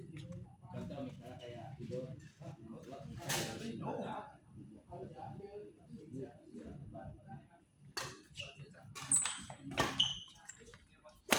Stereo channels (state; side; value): identical; both; correlation 1.00